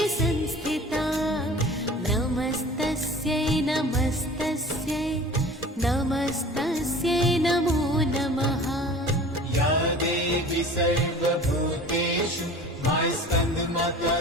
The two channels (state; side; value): normal; both; correlation 0.42